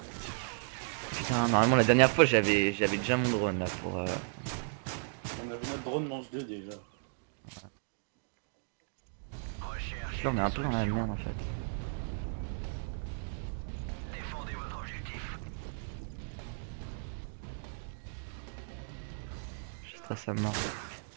Putain, normalement la dernière fois j'avais déjà mon drone là pour... On avait notre drone mange 2 déjà. Là on est un peu dans la merde en fait. Je stresse à mort.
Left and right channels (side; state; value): left; silent; digital silence